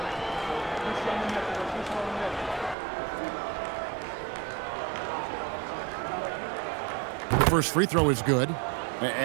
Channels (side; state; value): left; drops out; at 2.8 s